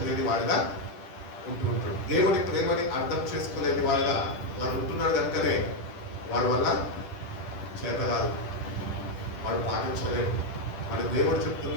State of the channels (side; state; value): right; late; 10 ms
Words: వాడిగా ఉంటుంటాడు. దేవుడి ప్రేమని అర్థం చేసుకోలేని వాడిగా వాడు ఉంటున్నాడు. కనుకనే వాడి వల్ల చేత కాదు, వాడు పాటించలేడు. మరి దేవుడు